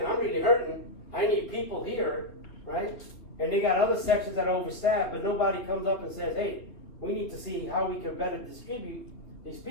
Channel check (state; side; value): late; right; 4.0 ms